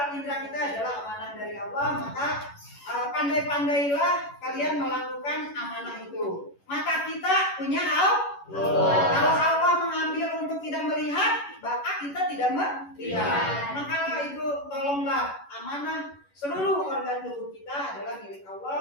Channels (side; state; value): right; late; 11 ms